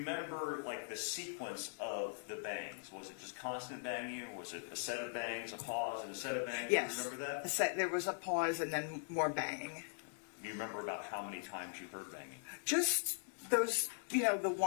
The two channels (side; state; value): right; silent; digital silence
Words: like the sequence of the bangs? Was it just constant banging, or was it a set of bangs, a pause, and a set of bangs? Yes. Do you remember that? There was a pause and then more banging. Do you remember about how many times you heard banging? Just those, the